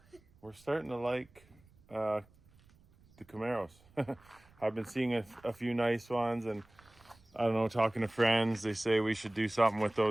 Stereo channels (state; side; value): noise; right; rumble, 29 dB below the sound